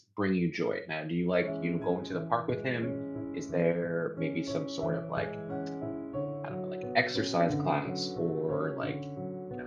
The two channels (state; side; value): identical; both; correlation 1.00